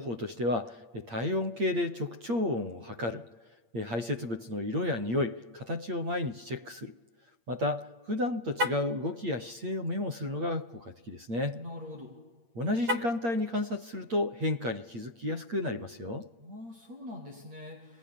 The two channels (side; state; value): left; late; 8.6 ms